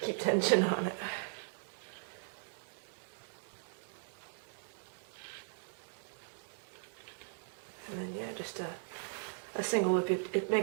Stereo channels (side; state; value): left; silent; digital silence